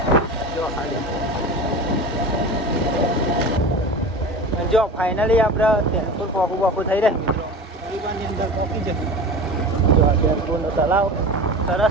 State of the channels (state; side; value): normal; both; correlation 0.32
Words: જો ખાલી. જો ફાઇનલી આપણે ચેનપુર પોકું થઈ રહ્યા મિત્રો. હરિવાનની અંદર પોકી જશે. જો આ ચેનપુરનો તલાવ